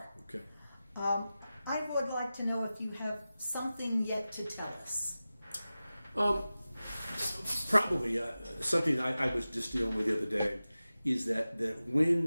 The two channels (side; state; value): both; inverted; correlation -0.95